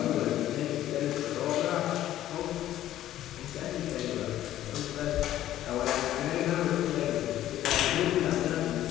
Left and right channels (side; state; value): right; quieter; 13.0 dB